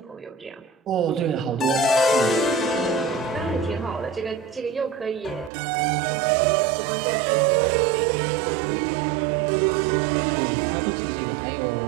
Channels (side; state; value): left; drops out; at 5.5 s